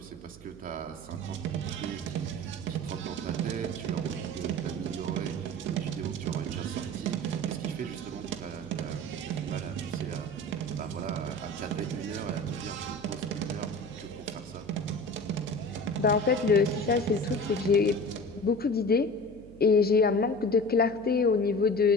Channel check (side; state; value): right; noise; hum, 19 dB below the sound